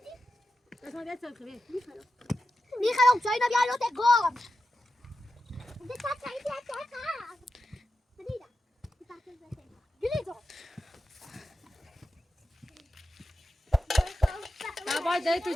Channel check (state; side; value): normal; both; correlation 0.90